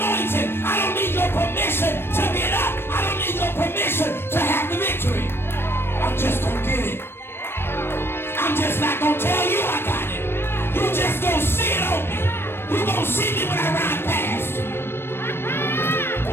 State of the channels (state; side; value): late; right; 0.11 ms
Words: I don't need your permission to get up. I don't need your permission to have the victory. I'm just gonna get it. I'm just not gonna tell you I got it. You just gonna see it on me. You gonna see me when I ride past.